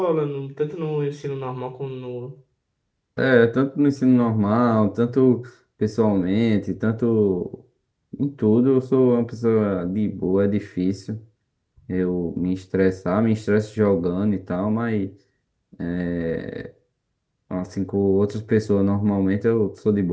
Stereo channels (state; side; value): identical; both; correlation 1.00